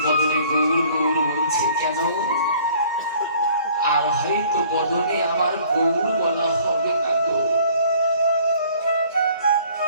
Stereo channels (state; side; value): inverted; both; correlation -0.55